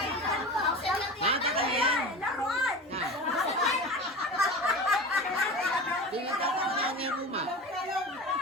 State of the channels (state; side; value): normal; both; correlation 0.32